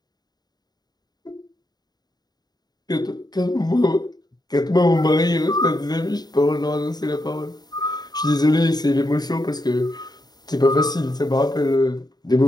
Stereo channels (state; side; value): late; right; 0.20 ms